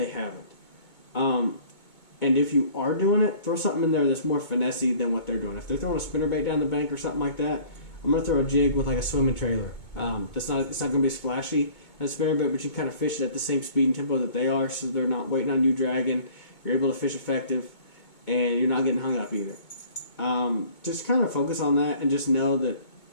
haven't. And if you are doing it, throw something in there that's more finessey than what they're doing. If they're throwing a spinnerbait down the bank or something like that, I'm going to throw a jig with like a swimming trailer. It's not going to be as flashy as spinnerbait, but you can kind of fish it at the same speed and tempo that they are, so they're not waiting on you dragging. You're able to fish effective, and you're not getting hung up either. Just kind of focus on that and just know that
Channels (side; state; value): right; late; 2.2 ms